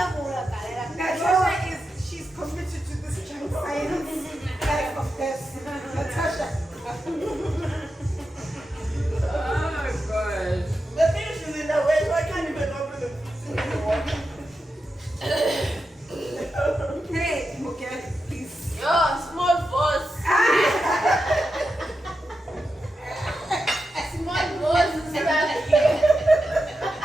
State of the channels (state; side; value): normal; both; correlation 0.89